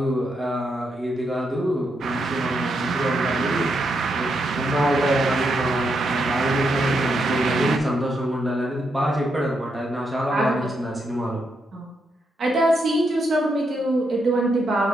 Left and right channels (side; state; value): both; normal; correlation 0.81